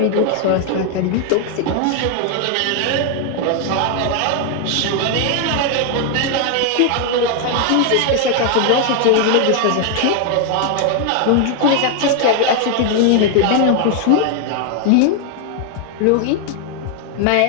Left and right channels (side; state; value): both; different; correlation 0.00